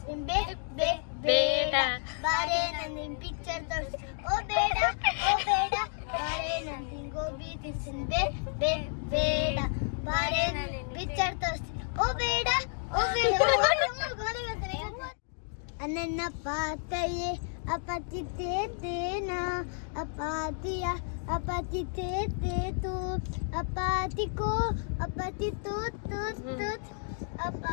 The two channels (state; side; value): silent; right; 57 dB below the other